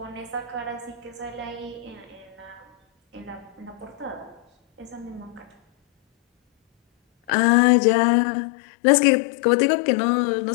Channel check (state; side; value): drops out; right; at 7.3 s